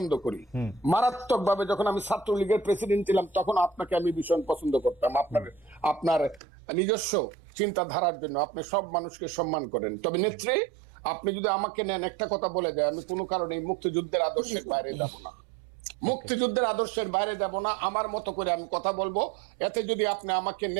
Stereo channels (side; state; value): left; drops out; at 6.4 s